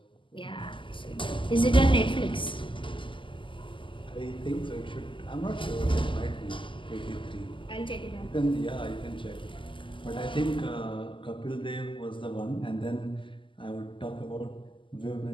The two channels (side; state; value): right; late; 0.25 ms